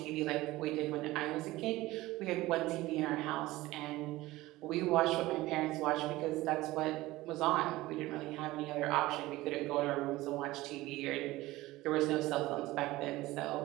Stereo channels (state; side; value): quieter; left; 18.3 dB